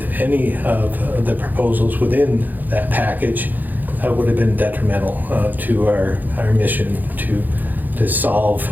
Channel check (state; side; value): late; left; 0.085 ms